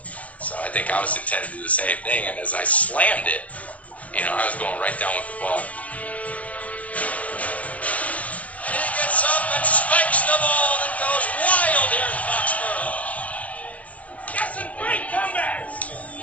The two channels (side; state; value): right; late; 0.068 ms